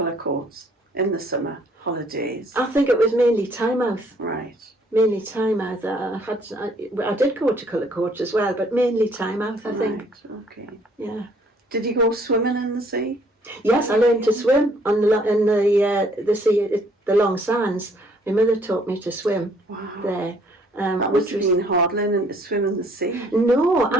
in the summer holidays? I think it was mainly Tynemouth. Right. Mainly Tynemouth. I did go to Cullercoats as well, but mainly Tynemouth, I think. Right, okay. Yeah. Did you go swimming in the sea? Yes, I learned to swim in the sea, the Long Sands. My mother taught me to swim there. That must have been hard learning to swim in the sea. No,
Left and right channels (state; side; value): normal; both; correlation 0.62